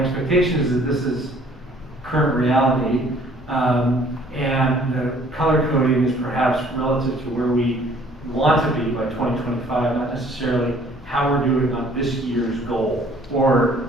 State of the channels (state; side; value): normal; both; correlation 0.57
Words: expectation is that this is current reality, and the color coding is perhaps relative to where we want to be by 2025, not necessarily how we're doing on this year's goal, or